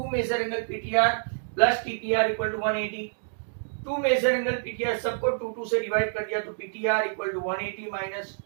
measure angle PTR plus TPR equal to 180। 2 measure angle PTR सबको 2 से डिवाइड कर दिया, तो PTR equal to 180 minus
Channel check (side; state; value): left; silent; digital silence